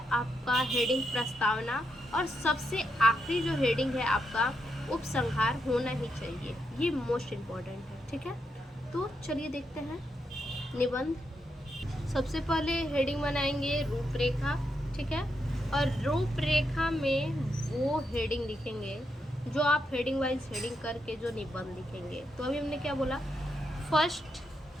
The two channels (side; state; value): both; normal; correlation 0.82